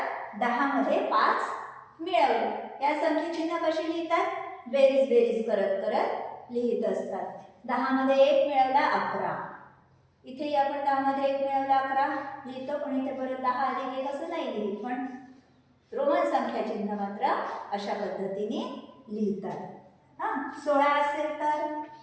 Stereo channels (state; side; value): identical; both; correlation 1.00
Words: 10 मध्ये 5 मिळवले. या संख्या चिन्ह कशी लिहितात? बेरीज करत करत लिहित असतात. 10 मध्ये 1 मिळवला 11. इथेही आपण 10 मध्ये 1 मिळवला 11 लिहितो. पण इथे परत 10 अधिक 1 असं नाही लिहित. पण रोमन संख्या चिन्ह मात्र अशा पद्धतीने लिहितात. हा 16 असेल